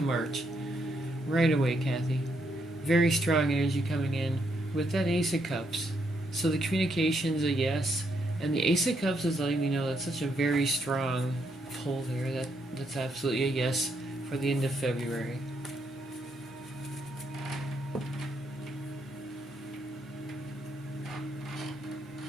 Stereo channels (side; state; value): both; normal; correlation 0.76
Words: March. Right away, Kathy. Very strong energy coming in with that Ace of Cups. So the communication's a yes, and the Ace of Cups is letting me know that's such a very strong pull there. That's absolutely a yes for the end of February.